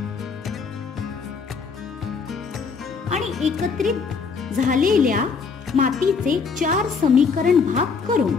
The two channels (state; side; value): quieter; right; 5.2 dB